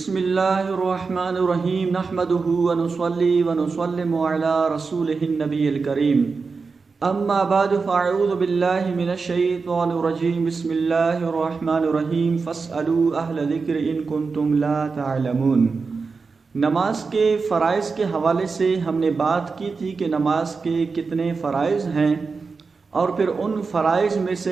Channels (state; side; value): quieter; left; 4.6 dB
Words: बिस्मिल्लाहिर्रहमानिर्रहीम नहमदुहु व नुसल्ली व नुसल्लिमु अला रसूलिहिन नबिय्यिल करीम अम्मा बाद फ़अऊज़ु बिल्लाहि मिनश शैतानिर रजीम बिस्मिल्लाहिर्रहमानिर्रहीम फ़स्अलू अहल ज़िक्र इन कुंतुम ला तअलमून। नमाज के फ़राइज़ के हवाले से हमने बात की थी कि नमाज के कितने फ़राइज़ हैं, और फिर उन फ़राइज़ में